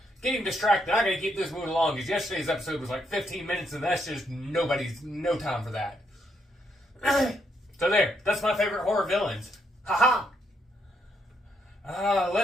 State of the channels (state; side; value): normal; both; correlation 0.76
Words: getting distracted. I gotta keep this moving along because yesterday's episode was like 15 minutes and that's just no time for that. So there, that's my favorite horror villains. Haha!